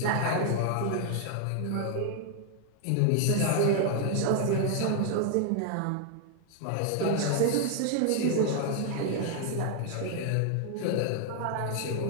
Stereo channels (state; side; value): different; both; correlation 0.00